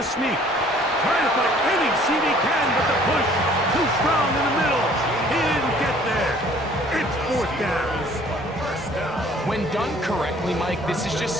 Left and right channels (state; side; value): normal; both; correlation 0.56